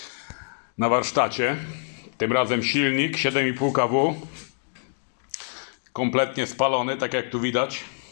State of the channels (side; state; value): right; silent; digital silence